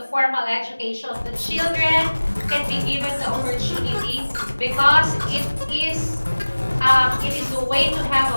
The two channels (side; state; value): both; inverted; correlation -1.00